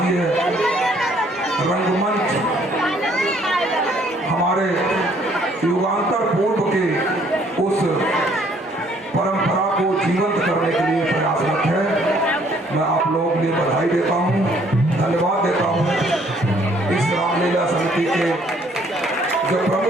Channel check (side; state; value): both; normal; correlation 0.63